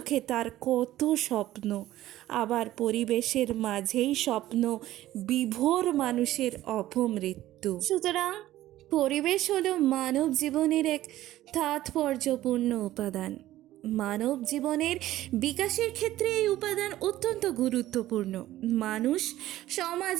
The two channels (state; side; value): quieter; left; 14.7 dB